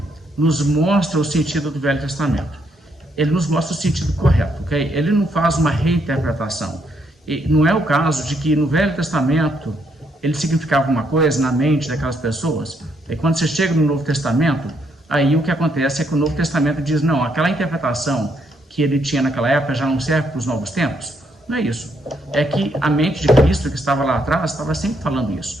nos mostra o sentido do Velho Testamento. Ele nos mostra o sentido correto, ok? Ele não faz uma reinterpretação. E não é o caso de que no Velho Testamento ele significava uma coisa na mente daquelas pessoas, e quando você chega no Novo Testamento, aí o que acontece é que o Novo Testamento diz, não, aquela interpretação que ele tinha naquela época já não serve para os novos tempos. Não é isso. É que a mente de Cristo que estava lá atrás estava sempre falando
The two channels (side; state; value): both; normal; correlation 0.74